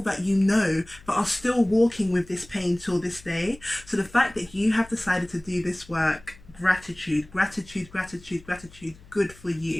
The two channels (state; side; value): noise; left; hum, 23 dB below the sound